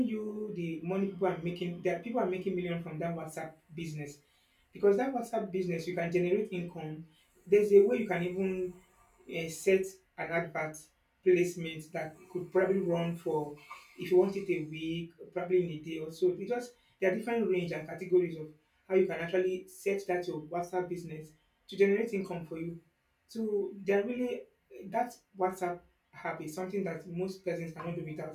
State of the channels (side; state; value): both; identical; correlation 1.00